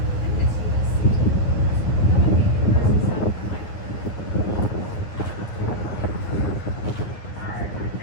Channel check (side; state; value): right; late; 9.8 ms